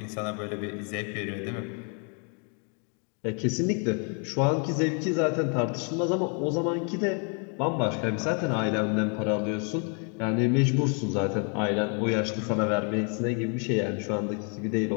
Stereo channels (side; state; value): right; quieter; 38.6 dB